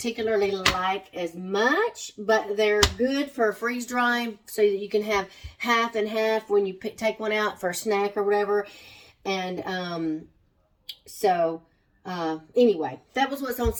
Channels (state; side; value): identical; both; correlation 1.00